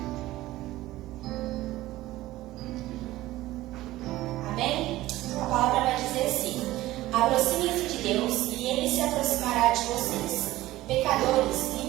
Amém? A palavra vai dizer assim: aproximem-se de Deus e Ele se aproximará de vocês. Pecadores,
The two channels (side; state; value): left; quieter; 16.6 dB